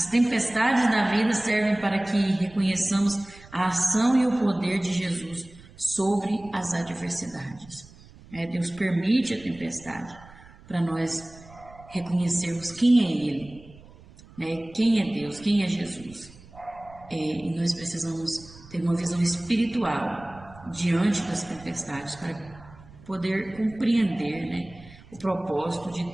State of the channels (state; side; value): noise; right; rumble, 22 dB below the sound